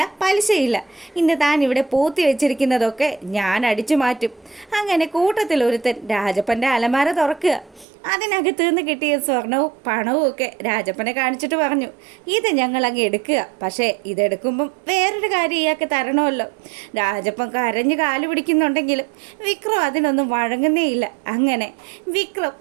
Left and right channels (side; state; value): left; drops out; at 7.9 s